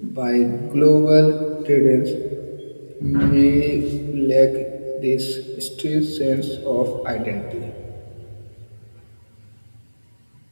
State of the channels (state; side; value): inverted; both; correlation -1.00